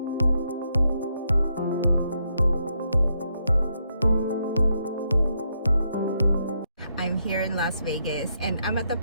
I'm here in Las Vegas and I'm at the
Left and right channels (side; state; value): both; inverted; correlation -0.78